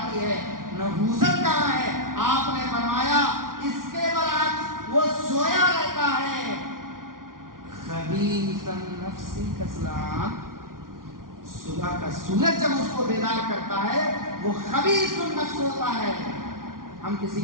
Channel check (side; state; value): left; late; 0.91 ms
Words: ہے۔ نحوست کہاں ہے؟ آپ نے فرمایا اس کے برعکس وہ سویا رہتا ہے، خبیث النفس کسلان، صبح کا سورج جب اس کو بیدار کرتا ہے وہ خبیث النفس ہوتا ہے۔ ہم کسی